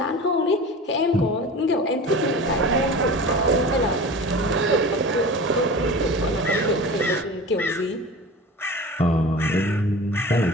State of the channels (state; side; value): normal; both; correlation 0.35